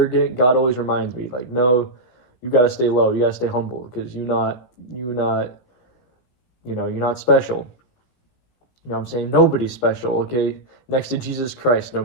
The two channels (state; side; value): late; right; 16 ms